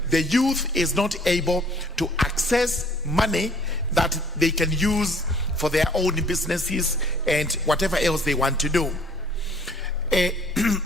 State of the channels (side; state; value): both; normal; correlation 0.57